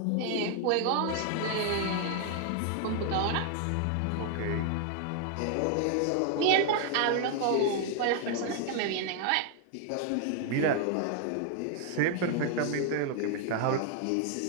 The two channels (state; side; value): different; both; correlation 0.00